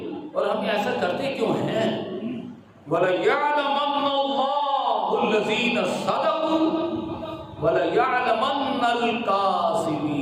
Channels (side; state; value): both; identical; correlation 1.00